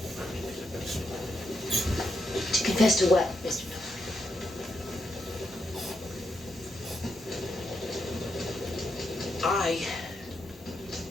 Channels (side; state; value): both; normal; correlation 0.82